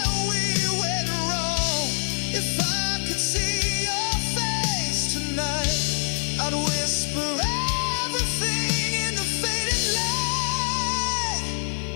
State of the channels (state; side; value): silent; right; digital silence